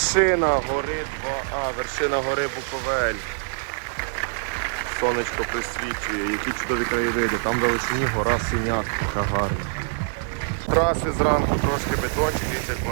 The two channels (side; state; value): left; silent; 62 dB below the other